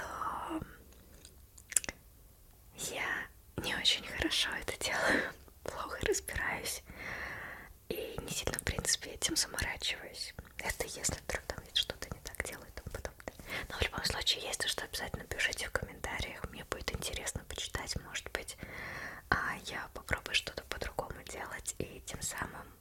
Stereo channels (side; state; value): both; identical; correlation 1.00